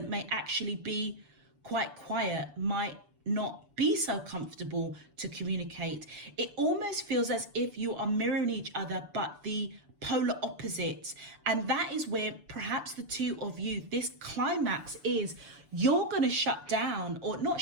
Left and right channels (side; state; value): left; late; 6.9 ms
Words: may actually be quite quiet, might not be so comfortable to communicate. It almost feels as if you are mirroring each other, but the polar opposites. And that is where perhaps the two of you, this climax is, you're going to shut down, or not